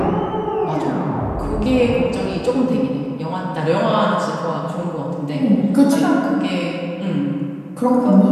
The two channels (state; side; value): identical; both; correlation 1.00